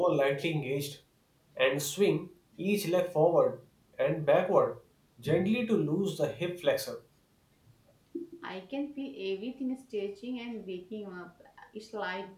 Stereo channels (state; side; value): identical; both; correlation 1.00